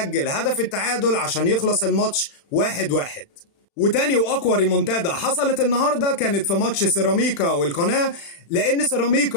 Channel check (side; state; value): right; late; 36 ms